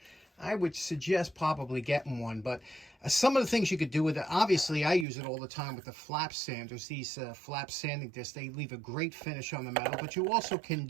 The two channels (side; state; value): left; drops out; at 5.1 s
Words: I would suggest probably getting one. But some of the things you could do with it, obviously I use it all the time with the flap sanders. These flap sanding discs, they leave a great finish on the metal. But you also can